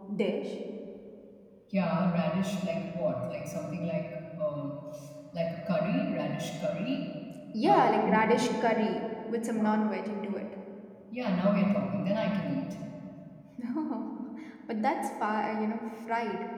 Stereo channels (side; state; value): both; identical; correlation 1.00